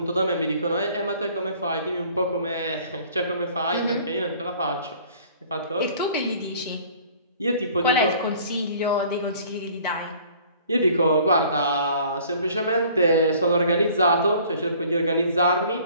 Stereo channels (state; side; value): inverted; both; correlation -0.53